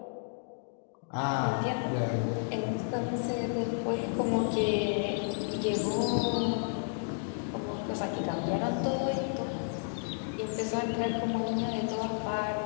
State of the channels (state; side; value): silent; right; digital silence